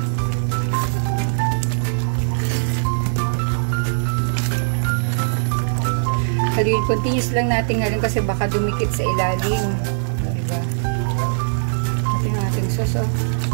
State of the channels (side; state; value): left; silent; digital silence